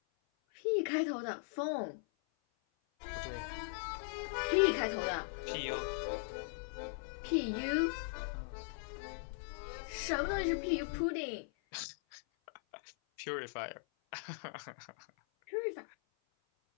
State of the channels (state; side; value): silent; right; 52 dB below the other